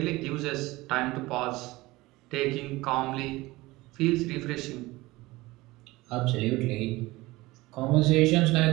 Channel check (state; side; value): quieter; left; 20.2 dB